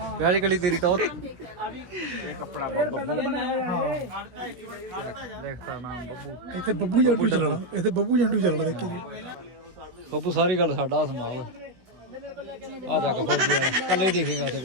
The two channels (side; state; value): left; late; 16 ms